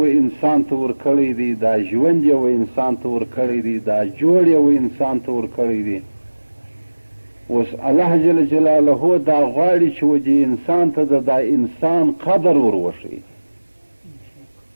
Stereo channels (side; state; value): both; inverted; correlation -1.00